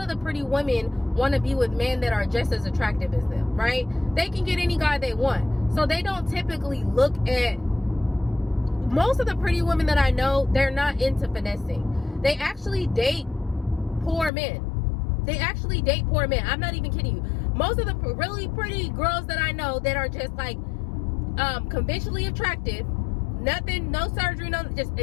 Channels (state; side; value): drops out; right; at 14.3 s